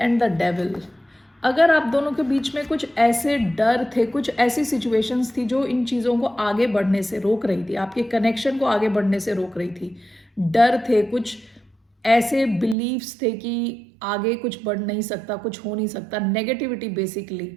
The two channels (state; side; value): drops out; left; at 12.8 s